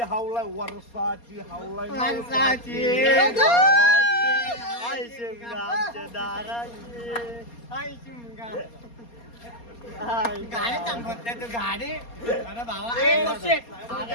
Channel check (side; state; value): right; late; 4.3 ms